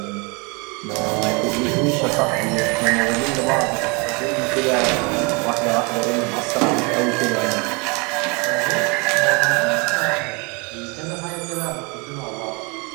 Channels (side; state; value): left; quieter; 30.3 dB